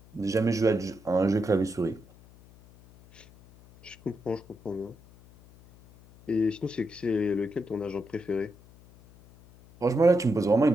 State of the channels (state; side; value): noise; left; hum, 24 dB below the sound